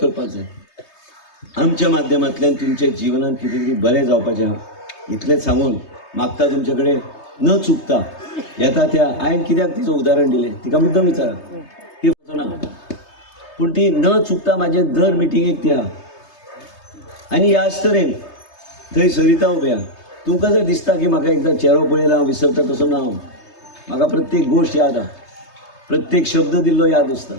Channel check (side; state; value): right; late; 3.2 ms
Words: जाय. आमच्या माध्यमांतल्यान तुमच्या जिवनांत कितें तरी बरें जावपाचें आहा इतलेंच सांगून मागता तुमचे कडेन न चुकता येता त्या हांवें कित्याक तिचें उदाहरण दिलें तिका मुद्दम विचारा ती वचना, पूण ती न चुकता म्हाजे दर मिटिंगेक ती आहा. आनी ह्याच तरेन थंय सरिता उबी आहा. तुमकां जर दिसता की म्हाका एकदां चेहरो पळयला हांव विसरता, तसो ना. हांव म्हाका प्रत्येक गोश्ट याद आहा, प्रत्येक शब्द दिल्लो याद आसता.